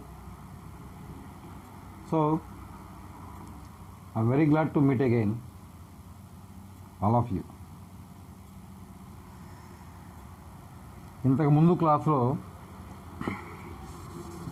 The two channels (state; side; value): identical; both; correlation 1.00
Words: So, I'm very glad to meet again, all of you. ఇంతకు ముందు క్లాస్లో